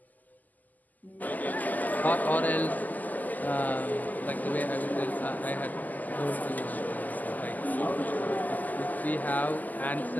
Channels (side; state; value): right; late; 0.082 ms